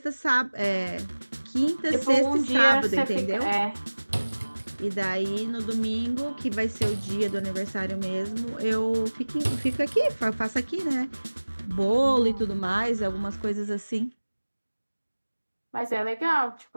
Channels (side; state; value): both; inverted; correlation -1.00